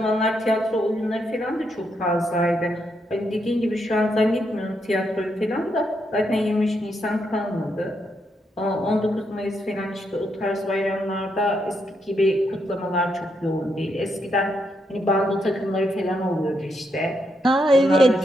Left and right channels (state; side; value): normal; both; correlation 0.79